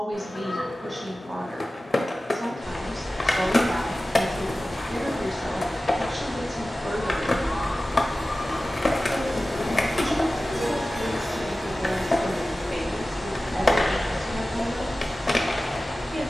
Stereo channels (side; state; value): both; normal; correlation 0.96